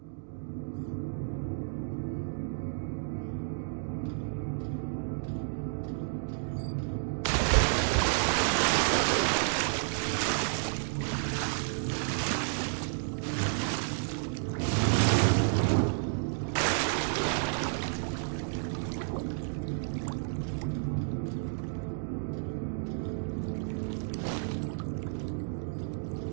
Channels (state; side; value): silent; left; digital silence